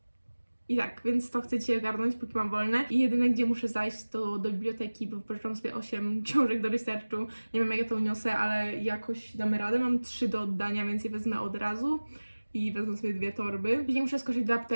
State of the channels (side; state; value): both; inverted; correlation -1.00